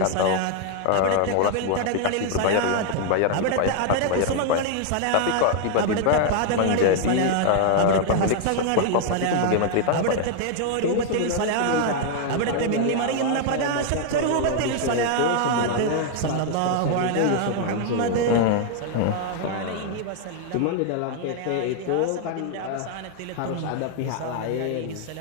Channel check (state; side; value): different; both; correlation 0.00